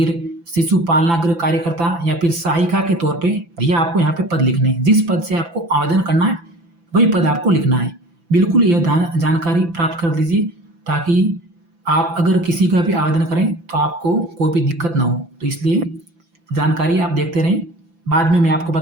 शिशु पालनागृह कार्यकर्ता या फिर सहायिका के तौर पे, यह आपको यहाँ पे पद लिखने हैं। जिस पद से आपको आवेदन करना है वही पद आपको लिखना है। बिल्कुल यह जानकारी प्राप्त कर लीजिए ताकि आप अगर किसी का भी आवेदन करें तो आपको कोई भी दिक्कत ना हो। तो इसलिए जानकारी आप देखते रहें, बाद में मैं आपको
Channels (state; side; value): late; left; 5.9 ms